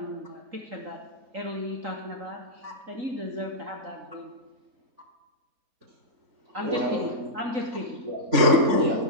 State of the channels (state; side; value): late; left; 3.5 ms